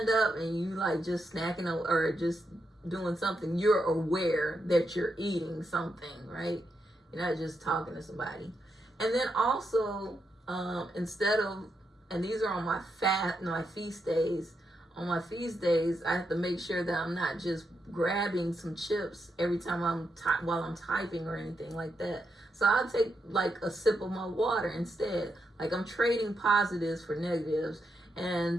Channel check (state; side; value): normal; both; correlation 0.83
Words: up and you like just snacking or just doing something, you're aware that you're eating something, right? You're not just talking to somebody. And then also, instead of, and these are on my feast days. On my feast days, I have to make sure that I'm not just grabbing some chips every time while I'm typing or anything like that. So I'll take like a sip of my water instead. Like I'm trading positives for negatives.